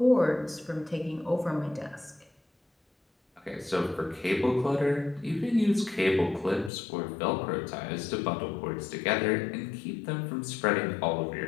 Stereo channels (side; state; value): right; drops out; at 6.7 s